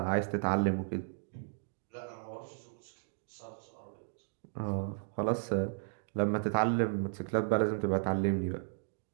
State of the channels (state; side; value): silent; left; digital silence